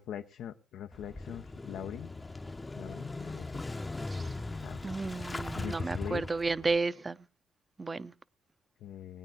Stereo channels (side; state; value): both; normal; correlation 0.89